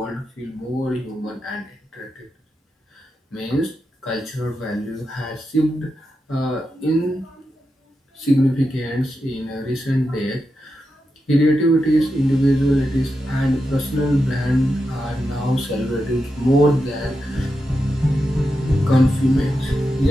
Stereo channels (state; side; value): normal; both; correlation 0.88